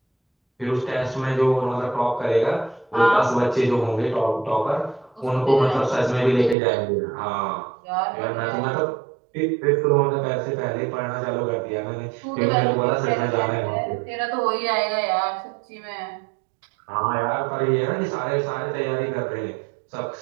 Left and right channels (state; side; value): drops out; left; at 6.6 s